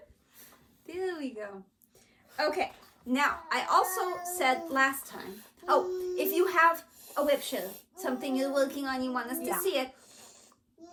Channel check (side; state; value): both; identical; correlation 1.00